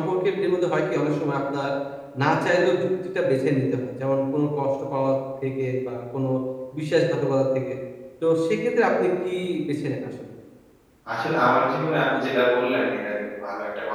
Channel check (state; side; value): identical; both; correlation 1.00